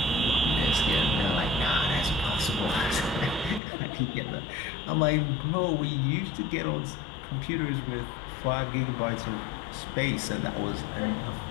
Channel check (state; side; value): drops out; right; at 3.6 s